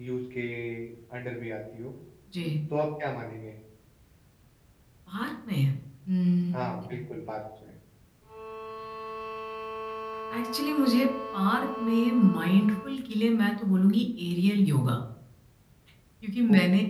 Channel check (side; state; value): both; identical; correlation 1.00